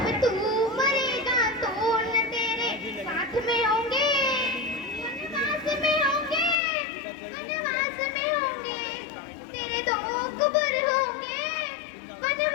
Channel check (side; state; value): right; drops out; at 6.6 s